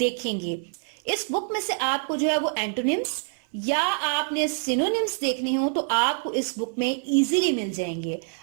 इस बुक में से आपको जो है वो एंटोनिम्स या आपने सिनोनिम्स देखने हो तो आपको इस बुक में इजीली मिल जाएंगे।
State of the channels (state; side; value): silent; left; 56 dB below the other